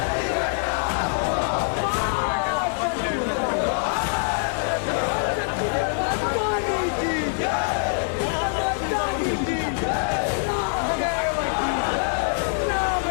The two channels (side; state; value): right; silent; digital silence